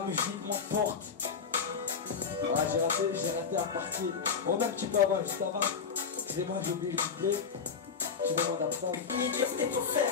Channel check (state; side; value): quieter; right; 6.0 dB